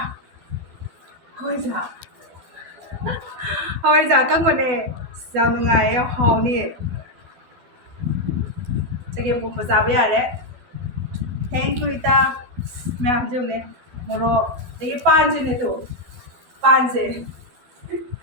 hawaiiza ꯑꯀꯪꯕꯅꯦ ꯌꯥꯝ ꯅꯨꯡꯉꯥꯏꯌꯦ ꯌꯥꯝ ꯍꯥꯎꯅꯤ ꯆꯒꯦꯝꯄꯣꯝꯕ ꯆꯥꯕ ꯌꯥꯔꯦ ꯊꯦꯡꯛ ꯌꯨ ꯏꯇꯥ ꯃꯌꯥꯝ ꯌꯦꯡꯉꯨꯅꯦ ꯃꯣꯔꯣꯛ ꯑꯗꯒꯤ ꯄꯥꯟꯁꯤꯅꯦ ꯇꯨ ꯄꯥꯟꯁꯦ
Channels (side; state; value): left; late; 12 ms